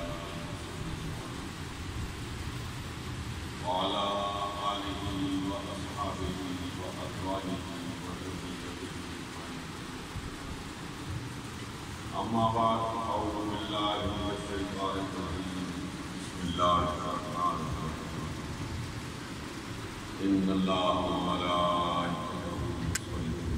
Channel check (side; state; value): both; identical; correlation 1.00